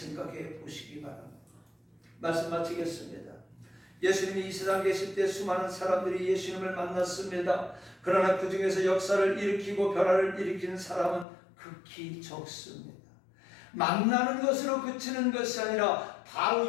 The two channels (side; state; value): right; drops out; at 11.2 s